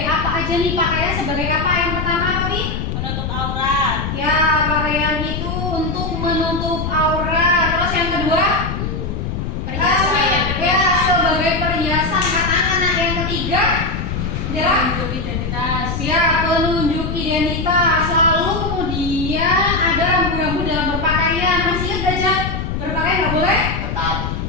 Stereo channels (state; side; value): noise; left; rumble, 3 dB below the sound